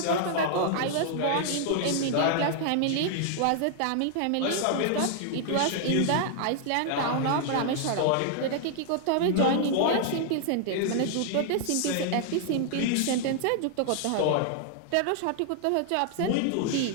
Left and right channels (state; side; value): different; both; correlation -0.01